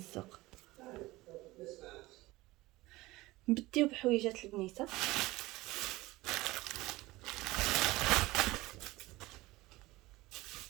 نبديو بحويجات البنيته.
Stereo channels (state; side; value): quieter; left; 19.5 dB